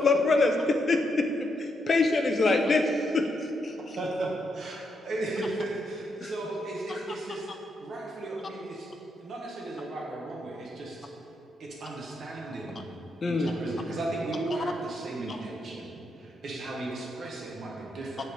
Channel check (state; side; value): normal; both; correlation 0.80